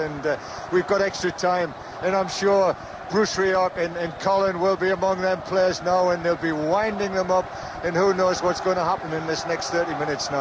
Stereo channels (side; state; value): both; identical; correlation 1.00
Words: we've got extra time, and I'm sure Bruce Rioch and Colin will be among them players now, and they'll be winding them up, and who knows what's going to happen in this next 30 minutes